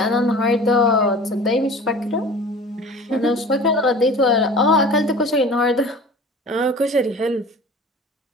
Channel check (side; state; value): both; normal; correlation 0.41